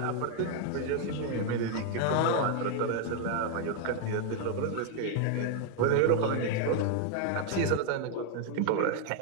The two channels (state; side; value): different; both; correlation 0.00